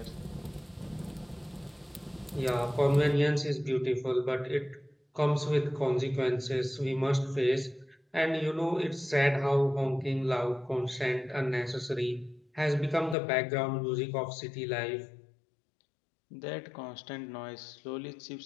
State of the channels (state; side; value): drops out; right; at 13.2 s